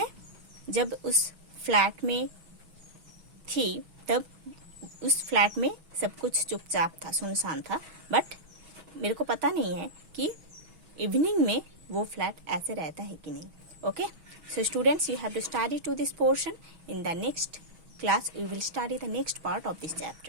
जब उस फ्लैट में थी तब उस फ्लैट में सब कुछ चुपचाप था, सुनसान था, बट मेरे को पता नहीं है कि इवनिंग में वो फ्लैट ऐसे रहता है कि नहीं। Okay, so students, you have to study to this portion. In the next class we will study the next part of this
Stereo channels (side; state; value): left; late; 6.4 ms